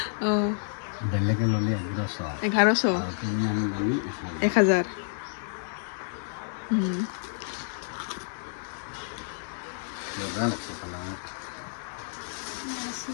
বেলেগে ললে 1100 তুমি আমি ললে 1000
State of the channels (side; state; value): right; silent; digital silence